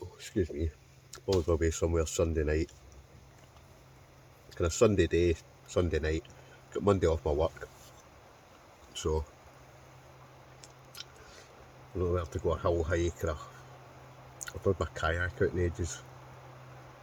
probably go away somewhere Sunday night, kind of Sunday day, Sunday night, got Monday off my work, so I don't know where to go a hill hike, or I've done my kayak out in ages,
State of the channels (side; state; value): both; identical; correlation 1.00